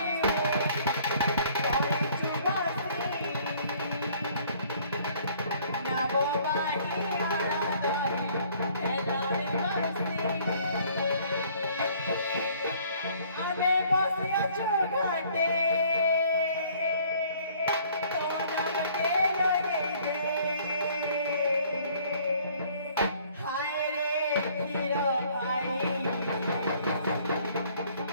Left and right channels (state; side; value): inverted; both; correlation -0.58